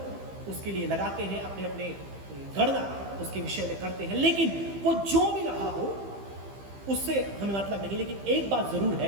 उसके लिए लगाते हैं, अपने अपने गणना उसके विषय में करते हैं। लेकिन वो जो भी रहा हो उससे हमें मतलब नहीं। लेकिन एक बात जरूर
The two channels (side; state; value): left; late; 15 ms